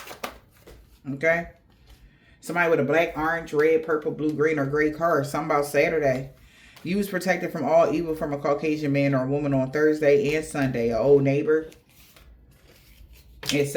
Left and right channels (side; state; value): both; identical; correlation 1.00